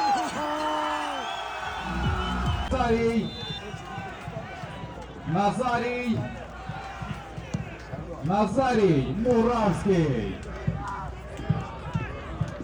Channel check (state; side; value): identical; both; correlation 1.00